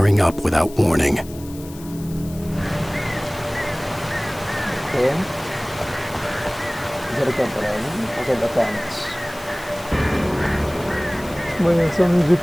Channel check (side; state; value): left; noise; hiss, 19 dB below the sound